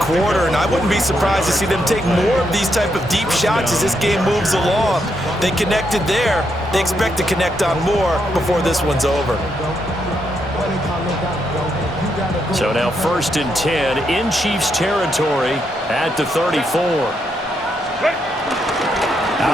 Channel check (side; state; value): both; normal; correlation 0.79